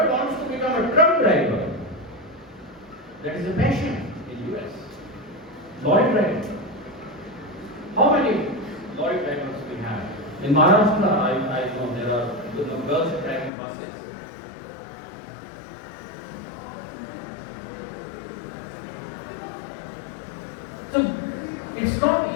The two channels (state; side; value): drops out; right; at 13.5 s